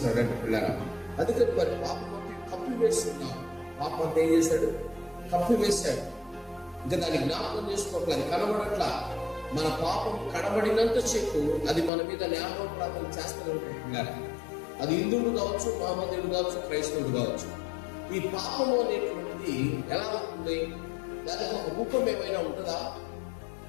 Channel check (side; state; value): right; drops out; at 11.9 s